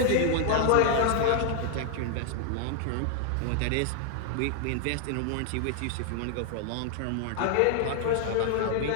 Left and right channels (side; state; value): both; different; correlation 0.00